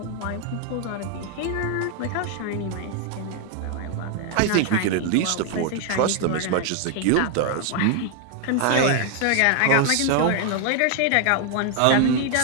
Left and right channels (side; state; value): both; different; correlation 0.00